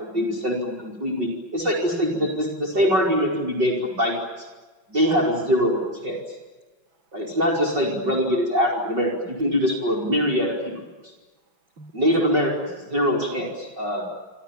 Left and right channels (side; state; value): left; late; 5.4 ms